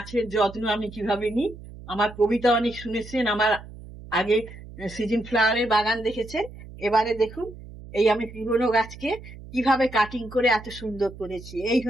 যত্ন আমি কিভাবে নিই। আমার কবিতা অনেক শুনেছেন, আমার আগে সিজন ফ্লাওয়ারের বাগান দেখেছেন। এবারে দেখুন এই আমি পুরনো গাছকে কিভাবে কাটিং করে এত সুন্দর করেছি। এই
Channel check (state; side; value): noise; right; hum, 16 dB below the sound